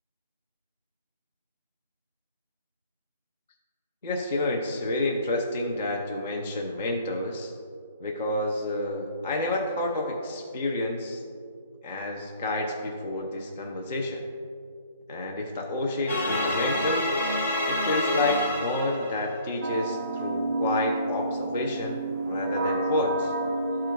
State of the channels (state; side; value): inverted; both; correlation -0.53